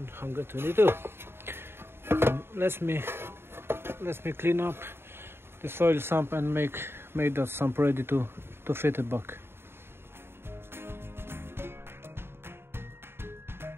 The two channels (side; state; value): left; late; 0.11 ms